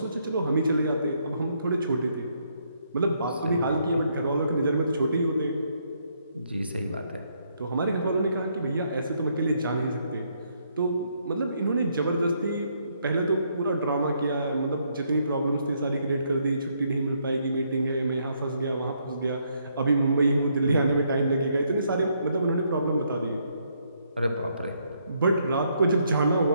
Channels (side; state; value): both; inverted; correlation -0.73